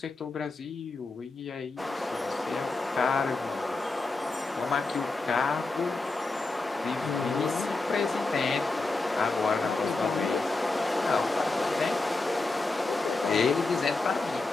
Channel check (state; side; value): quieter; right; 3.4 dB